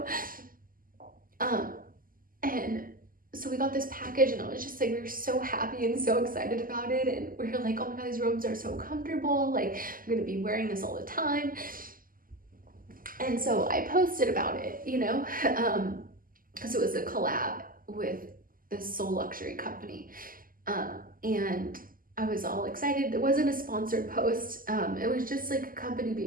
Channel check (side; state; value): left; late; 0.41 ms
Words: And so we got this package, and I was just like, we were so happy and so excited about it. And we were like, oh my God, these robes are so comfortable. Like, I'm gonna be wearing this all the time. And so I posted about it, you know, because it was a collab with this Soul Luxury company. And I was all excited. It wasn't a sponsored post. It was just like a company